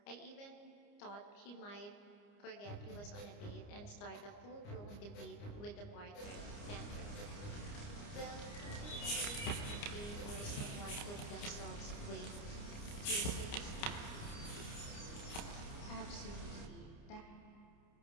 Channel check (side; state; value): right; late; 29 ms